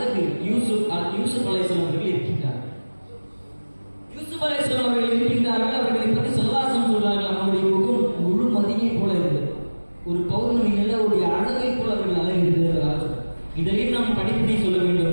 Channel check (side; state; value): both; inverted; correlation -1.00